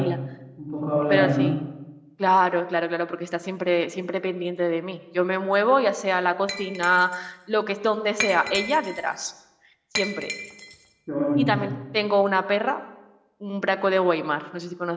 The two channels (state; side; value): identical; both; correlation 1.00